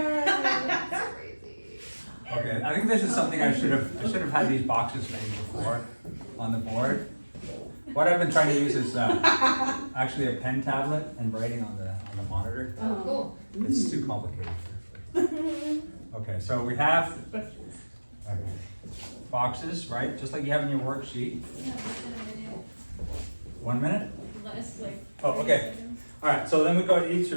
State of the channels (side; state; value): both; inverted; correlation -1.00